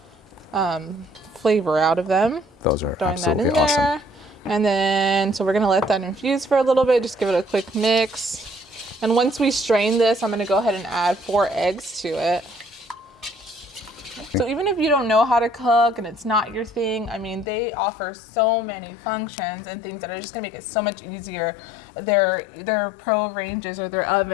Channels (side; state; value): right; drops out; at 17.4 s